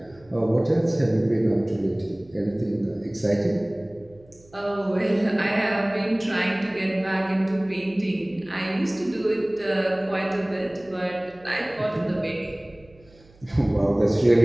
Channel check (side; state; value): right; noise; hum, 27 dB below the sound